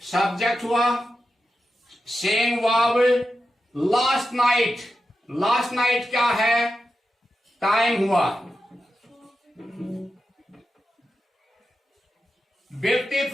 सब्जेक्ट हुआ, same verb last night. Last night क्या है? टाइम हुआ।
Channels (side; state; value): both; normal; correlation 0.90